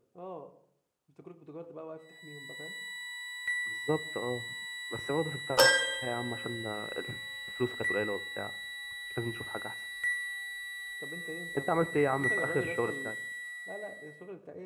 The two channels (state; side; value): identical; both; correlation 1.00